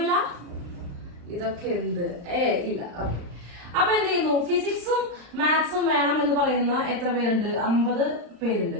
ഇതൊക്കെ എന്ത്? ഇല്ല. ഓക്കെ, അപ്പൊ എന്ത് ചെയ്യുന്നു? ഫിസിക്സും മാത്സും വേണം എന്ന് പറയുന്ന എത്ര പേരുണ്ട്? 50 പേരുണ്ട്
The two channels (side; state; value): left; late; 35 ms